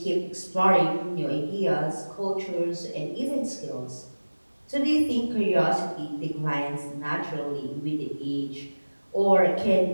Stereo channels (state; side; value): inverted; both; correlation -1.00